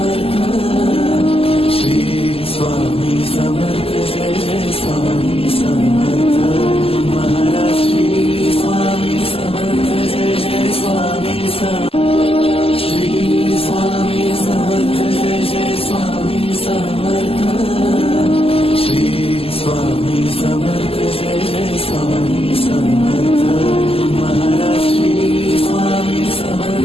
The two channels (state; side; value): late; right; 0.28 ms